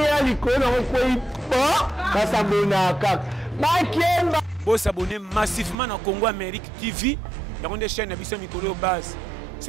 likona ko ba s'abonner ka ba kemba bo s'abonner massivement na Congo Amérique TV ya konde chaîne na biso mikolo base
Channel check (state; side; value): drops out; left; at 5.8 s